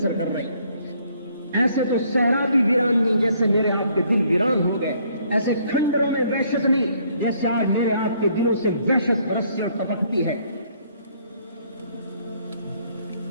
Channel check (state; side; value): inverted; both; correlation -0.65